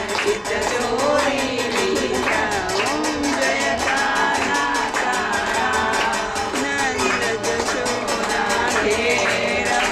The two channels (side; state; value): both; identical; correlation 1.00